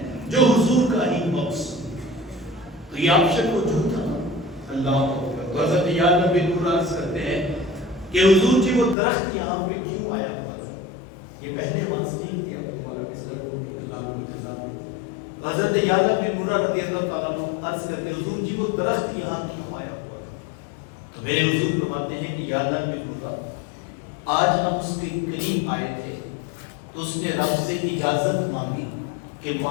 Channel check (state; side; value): drops out; right; at 9.0 s